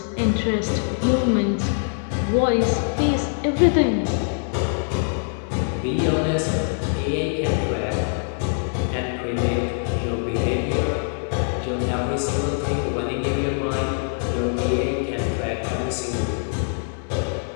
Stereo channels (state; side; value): silent; right; 63 dB below the other